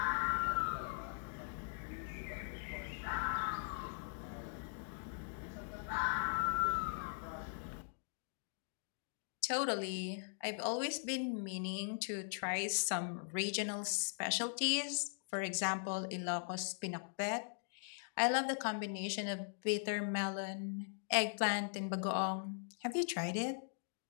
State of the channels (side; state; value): right; silent; digital silence